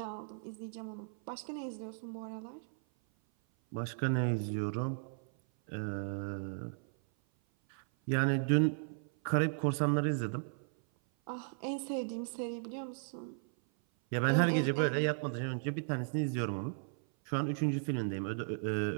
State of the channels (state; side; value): silent; left; 54 dB below the other